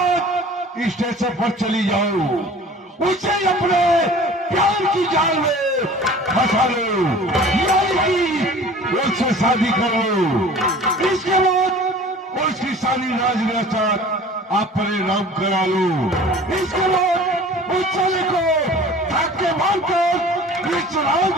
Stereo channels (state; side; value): normal; both; correlation 0.45